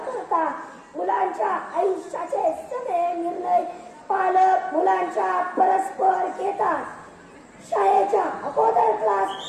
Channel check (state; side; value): identical; both; correlation 1.00